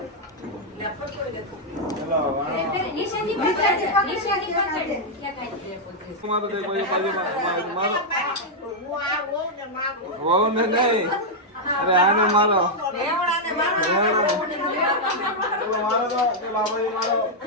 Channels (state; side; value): normal; both; correlation -0.03